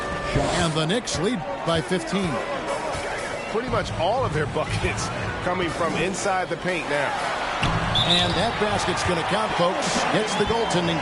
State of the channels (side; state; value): both; identical; correlation 1.00